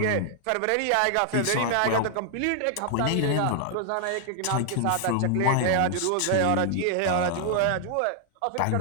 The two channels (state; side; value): different; both; correlation 0.00